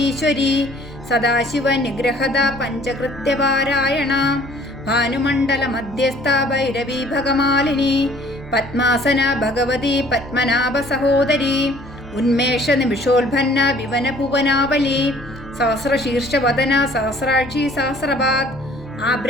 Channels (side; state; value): both; normal; correlation 0.55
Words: സദാശിവ നിഗ്രഹത പഞ്ചകൃത്യപാരായണ ഭാനുമണ്ഡല മധ്യസ്ഥ ഭൈരവി ഭഗമാലിനി പത്മാസന ഭഗവതി പത്മനാഭ സഹോദരി ഉന്മേഷ നിമിഷോത്ഭന്ന വിവന ഭുവനാവലി സഹസ്രശീർഷവദന സഹസ്രാക്ഷി സഹസ്രപാത് ആ